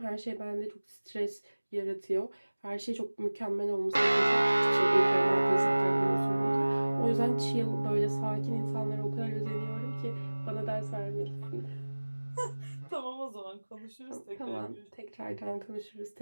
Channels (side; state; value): both; inverted; correlation -1.00